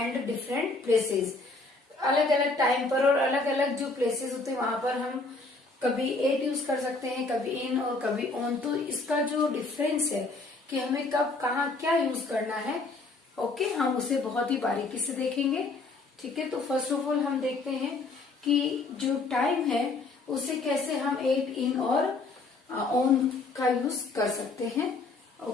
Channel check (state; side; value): quieter; right; 3.5 dB